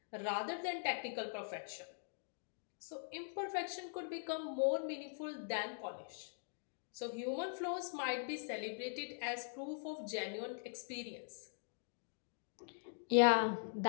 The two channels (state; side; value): silent; right; digital silence